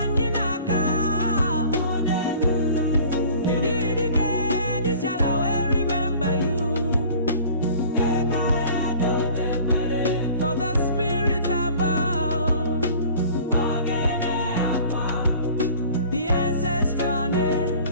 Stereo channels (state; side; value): inverted; both; correlation -0.46